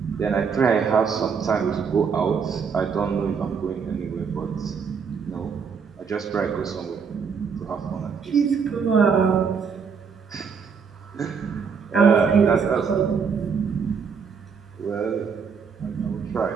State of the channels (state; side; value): quieter; left; 6.1 dB